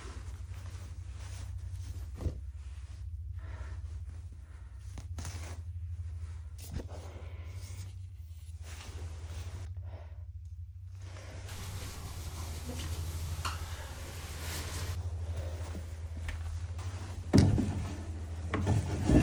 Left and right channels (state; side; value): identical; both; correlation 1.00